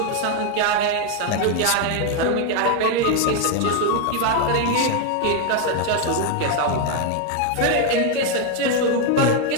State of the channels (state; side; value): different; both; correlation 0.01